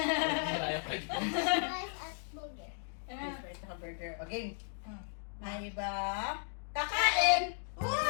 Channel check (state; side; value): silent; right; digital silence